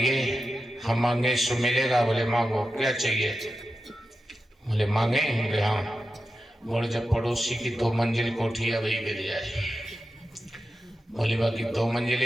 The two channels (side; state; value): both; normal; correlation 0.91